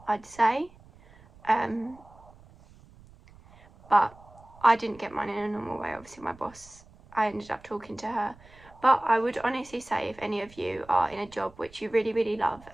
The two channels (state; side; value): noise; right; rumble, 24 dB below the sound